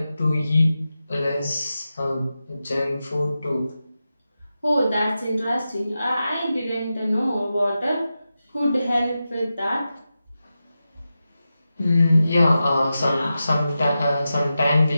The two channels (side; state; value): both; inverted; correlation -0.91